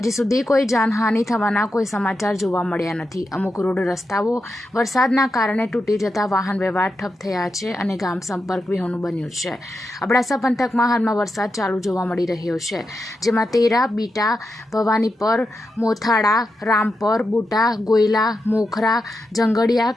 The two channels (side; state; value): both; normal; correlation 0.87